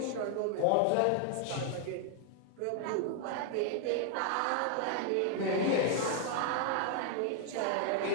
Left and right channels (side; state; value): both; different; correlation 0.00